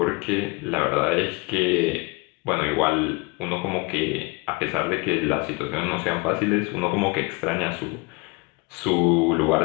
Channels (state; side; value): quieter; right; 27.5 dB